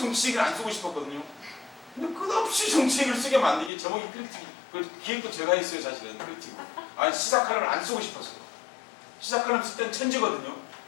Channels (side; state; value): right; drops out; at 3.7 s